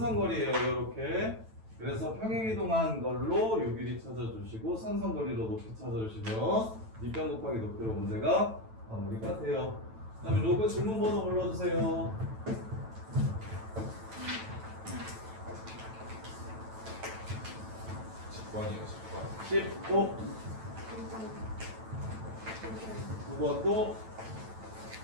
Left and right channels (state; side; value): late; left; 9.1 ms